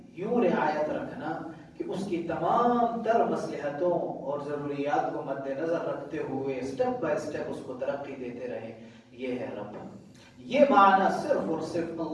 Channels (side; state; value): both; identical; correlation 1.00